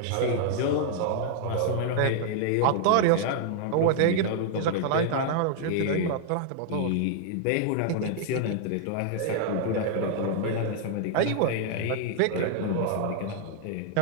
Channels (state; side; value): different; both; correlation -0.01